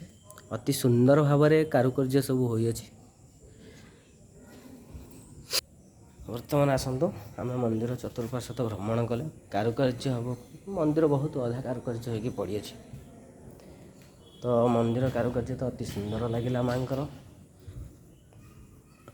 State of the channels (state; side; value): identical; both; correlation 1.00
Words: ଅତି ସୁନ୍ଦର ଭାବରେ କାରୁକାର୍ଯ୍ୟ ସବୁ ହୋଇଅଛି। ବର୍ତ୍ତମାନ ଆସନ୍ତୁ ଆମେ ମନ୍ଦିର ଚତୁଃପାର୍ଶ୍ୱ ଭ୍ରମଣ କଲେ। କାରୁକାର୍ଯ୍ୟ ହେବ, ମନ୍ଦିର ବହୁତ ଅଧା କାରୁକାର୍ଯ୍ୟ ହୋଇକି ପଡ଼ିଅଛି। ତ ମନ୍ଦିର କାରୁକାର୍ଯ୍ୟ ତ ଅତି ସୁନ୍ଦର ଲାଗିଲା ମାଆଙ୍କର।